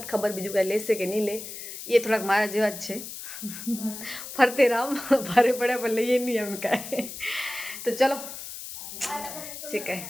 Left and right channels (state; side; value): noise; left; hiss, 10 dB below the sound